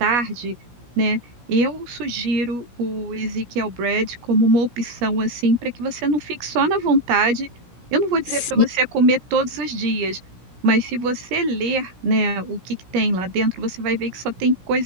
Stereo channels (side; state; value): left; late; 17 ms